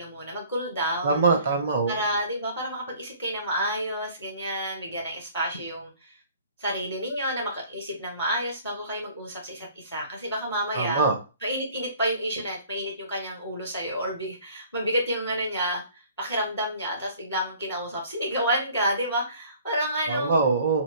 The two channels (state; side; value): inverted; both; correlation -0.53